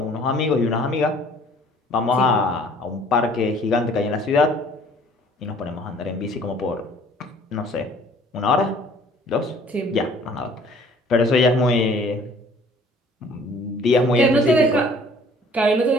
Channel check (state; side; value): normal; both; correlation 0.54